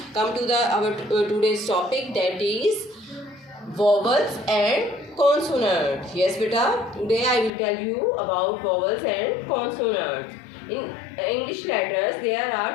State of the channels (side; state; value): right; drops out; at 7.5 s